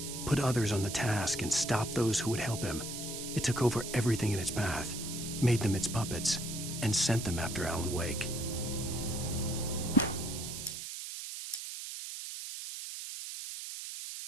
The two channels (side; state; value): right; noise; hiss, 7 dB below the sound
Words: put others on the task, and stop those who would help him. It took over everything in its path, made them its puppets, and sent them after Alan Wake.